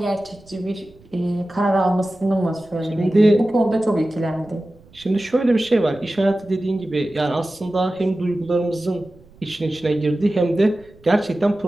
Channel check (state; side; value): noise; right; rumble, 27 dB below the sound